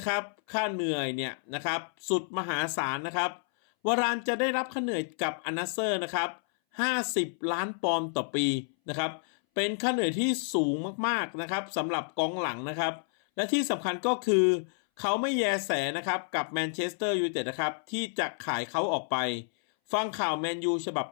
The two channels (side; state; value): right; silent; 58 dB below the other